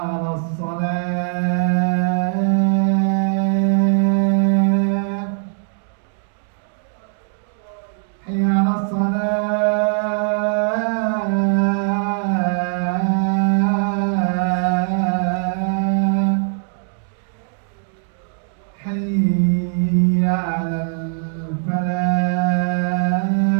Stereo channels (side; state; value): left; silent; digital silence